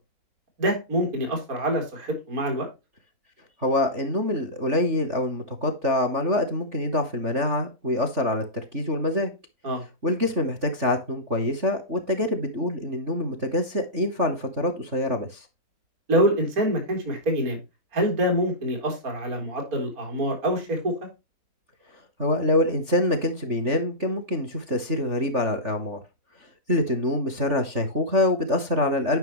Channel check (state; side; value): late; left; 3.4 ms